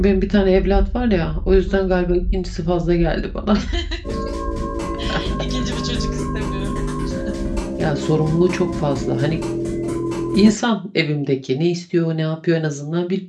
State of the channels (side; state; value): both; identical; correlation 1.00